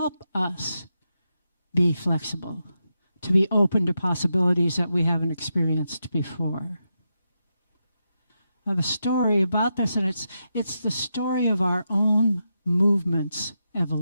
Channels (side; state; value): both; inverted; correlation -0.86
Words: us be flexible, to be open to possibilities that we haven't experienced before. the story about this, and it's the story of our own movement's